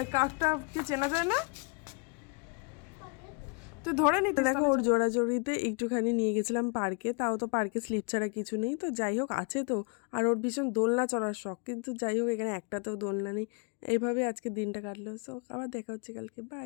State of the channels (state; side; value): quieter; right; 33.7 dB